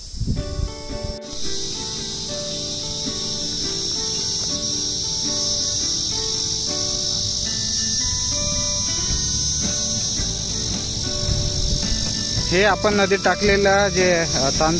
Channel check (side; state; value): both; identical; correlation 1.00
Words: हे आपण नदीत टाकलेलं जे